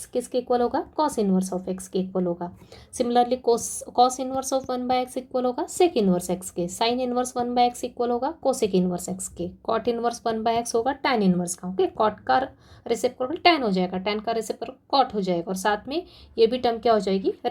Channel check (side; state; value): both; identical; correlation 1.00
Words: किसके इक्वल होगा? कॉस इनवर्स ऑफ एक्स के इक्वल होगा। Similarly cos inverse of 1/x equal होगा सेक इनवर्स एक्स के। साइन इनवर्स 1/x इक्वल होगा कोसेक इनवर्स एक्स के। कॉट इनवर्स 1/x होगा टैन इनवर्स का। ओके, कॉट का रेसिप्रोकल टैन हो जाएगा, टैन का रेसिप्रोकल कॉट हो जाएगा, और साथ में ये भी टर्म क्या हो जाएगी?